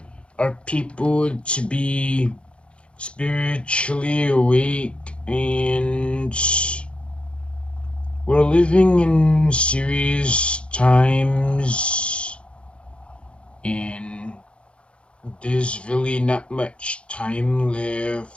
our people to be spiritually awake, and we're living in serious times, and there's really not much time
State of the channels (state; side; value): late; right; 0.058 ms